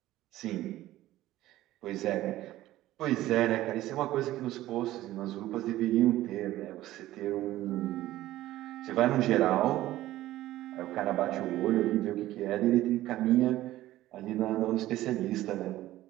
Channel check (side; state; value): left; quieter; 15.3 dB